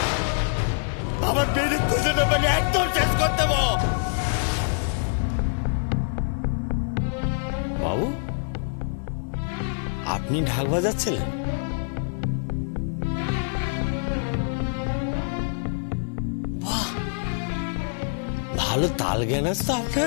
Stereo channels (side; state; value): right; silent; 56 dB below the other